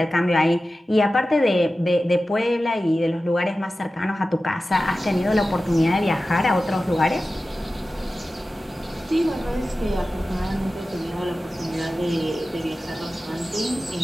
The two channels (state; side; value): normal; both; correlation 0.95